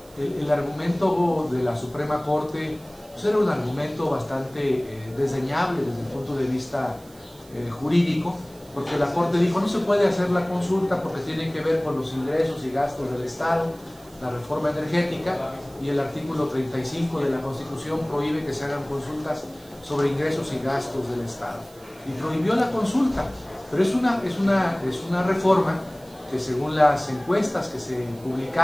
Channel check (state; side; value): noise; right; hiss, 26 dB below the sound